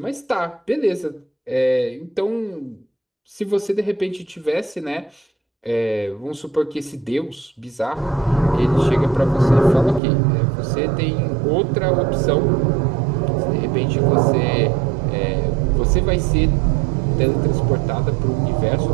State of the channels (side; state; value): left; drops out; at 10.0 s